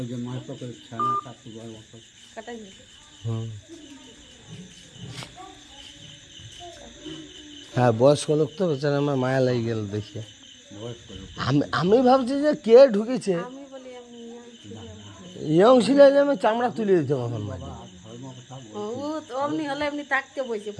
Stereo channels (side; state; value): both; identical; correlation 1.00